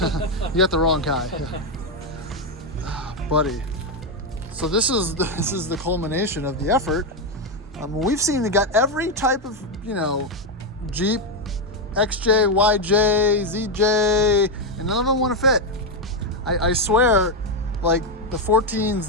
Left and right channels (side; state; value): both; normal; correlation 0.06